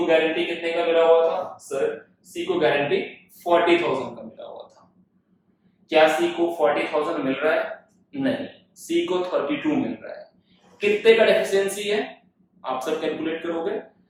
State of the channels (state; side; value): identical; both; correlation 1.00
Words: गारंटी कितने का मिला हुआ था, सर सी को गारंटी 40,000 का मिला हुआ था। क्या सी को 40,000 मिल रहा है, नहीं, सी को 32 मिल रहा है। कितने का डेफिशिएंसी है, आप सब कैलकुलेट करोगे,